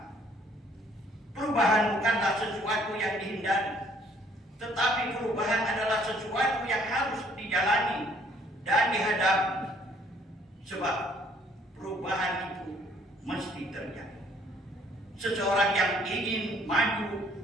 Perubahan bukanlah sesuatu yang dihindari, tetapi perubahan adalah sesuatu yang harus dijalani dan dihadapi, sebab perubahan itu mesti terjadi. Seseorang yang ingin maju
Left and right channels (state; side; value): normal; both; correlation 0.62